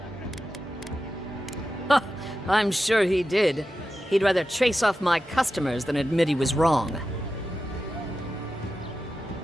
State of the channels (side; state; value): both; normal; correlation 0.91